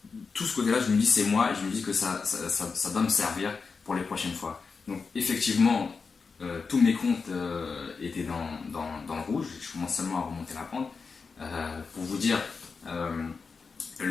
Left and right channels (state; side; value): quieter; right; 4.9 dB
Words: tout ce côté-là, je me dis c'est moi, et je me dis que ça doit me servir pour les prochaines fois. Donc effectivement, tous mes comptes étaient dans le rouge. Je commence seulement à remonter la pente. Pour vous dire,